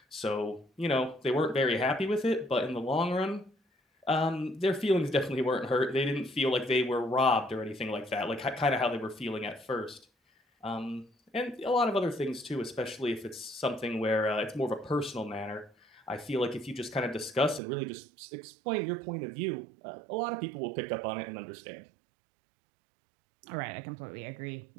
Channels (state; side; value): drops out; left; at 17.6 s